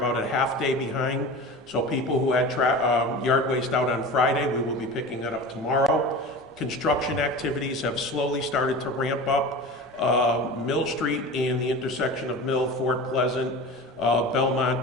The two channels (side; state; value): both; normal; correlation 0.33